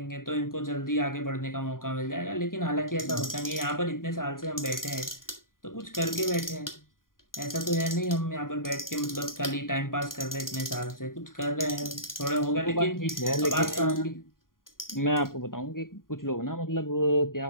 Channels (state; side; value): late; right; 0.91 ms